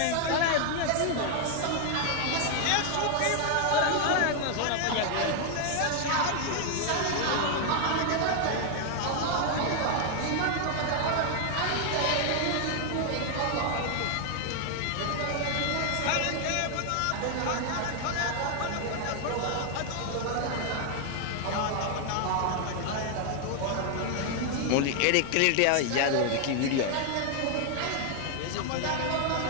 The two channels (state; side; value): different; both; correlation 0.00